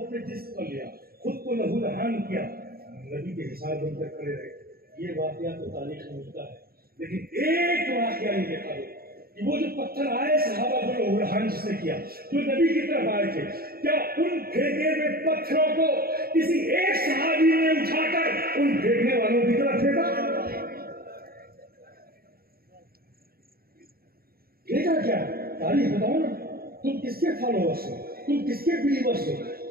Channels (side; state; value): left; late; 0.44 ms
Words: اپنے جسم پر لیا، خود کو لہو لہان کیا، نبی کے حصار بن کر کھڑے رہے۔ یہ واقعہ تو تاریخ میں ملتا ہے، لیکن ایک واقعہ نہیں دیکھا گیا کہ وہ جو پتھر آئے صحابہ کو لہو لہان جس نے کیا، جو نبی کی طرف آئے تھے، کیا ان پھینکے ہوئے پتھروں کو کسی ایک صحابی نے اٹھا کر ان پھینکنے والوں کی طرف پھینکا؟ پھینکا کیا؟ تاریخ بتاؤ نا، تم کس کے فالوورس ہو، تم کس کے بلیورس ہو،